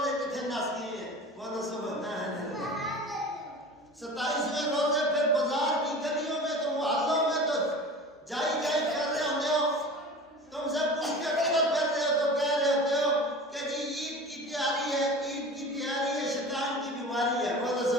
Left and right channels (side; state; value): both; normal; correlation 0.37